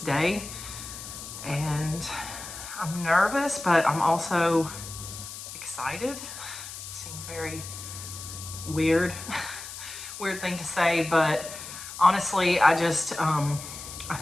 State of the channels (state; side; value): noise; left; hiss, 11 dB below the sound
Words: And I'm nervous, but I'm also excited. Seems very weird, weird thing to say, but honestly, I